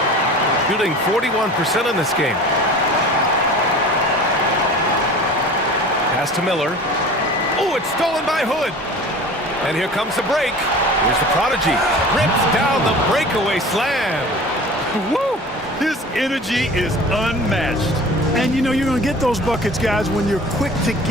Shooting 41% in this game. Pass to Miller. Oh, it's stolen by Hood. And here comes the break. Here's the prodigy. Rips down the breakaway slam. Woo! His energy is unmatched. And you know you're going to get those buckets, guys, when you're quick to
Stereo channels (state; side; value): normal; both; correlation 0.40